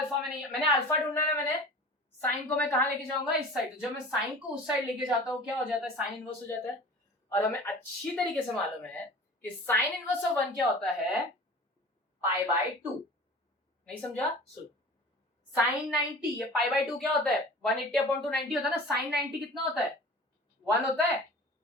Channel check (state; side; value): normal; both; correlation 0.40